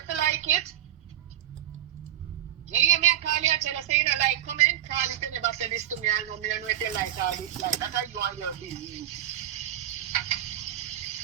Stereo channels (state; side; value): quieter; left; 11.6 dB